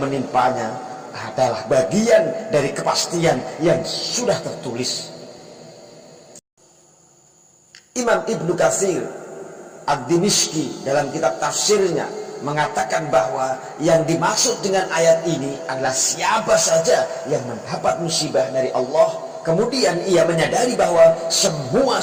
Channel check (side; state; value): both; identical; correlation 1.00